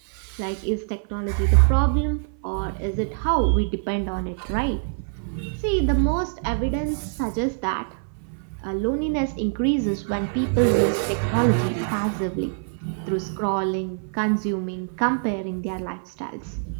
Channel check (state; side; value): silent; left; 58 dB below the other